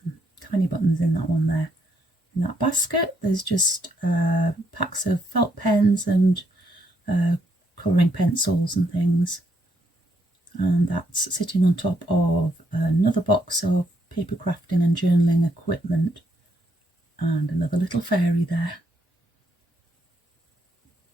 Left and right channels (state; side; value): normal; both; correlation 0.74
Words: and tiny buttons in that one there. In that basket, there's just packs of felt pens and colouring pencils and things. And that's sitting on top of another box of paper crafting and journaling equipment, and another little fairy there.